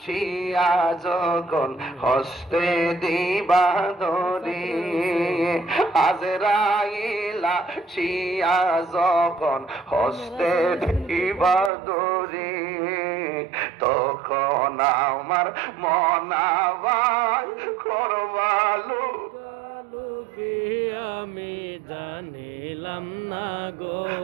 শিয়া যখন হস্তে দিবা ধরি, আজরাইলা শিয়া যখন হস্তে দিবা ধরি, তখন আমার মনাবাই করবালু আমি জানিলাম না গো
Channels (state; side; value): drops out; left; at 11.7 s